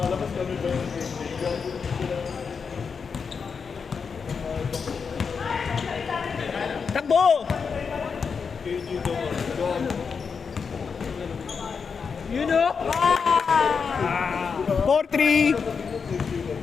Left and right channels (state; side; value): quieter; right; 5.8 dB